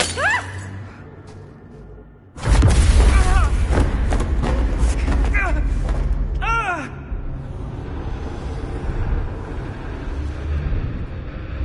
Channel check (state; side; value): identical; both; correlation 1.00